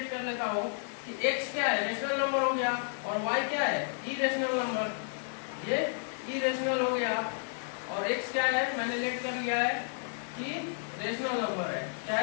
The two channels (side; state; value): right; silent; digital silence